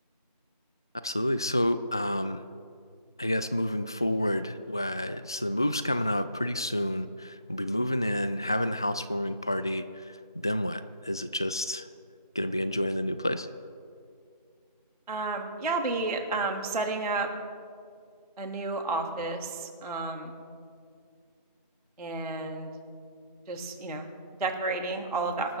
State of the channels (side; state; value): both; inverted; correlation -0.62